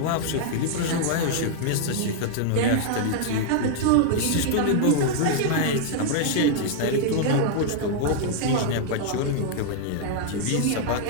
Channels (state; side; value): different; both; correlation -0.01